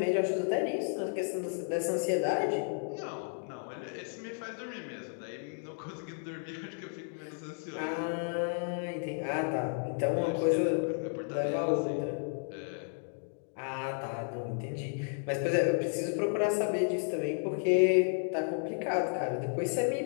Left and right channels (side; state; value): right; silent; 56 dB below the other